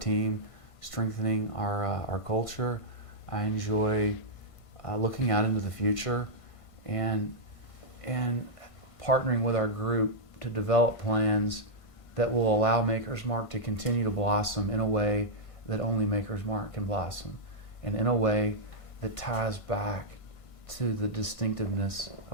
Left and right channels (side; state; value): right; late; 1.5 ms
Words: strengthening our culture. I enjoy looking out into the future and partnering with our group to develop plans that will allow Maker's Mark to continue to blossom in a way that only Maker's Mark can blossom, and in a way that ties back to the distinctiveness